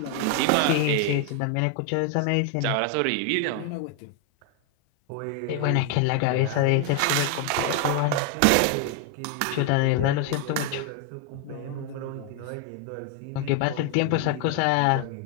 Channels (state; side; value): different; both; correlation 0.00